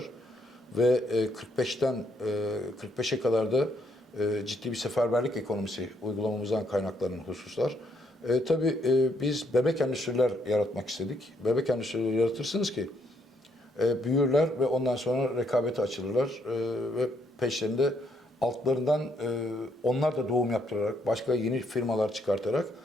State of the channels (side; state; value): both; normal; correlation 0.72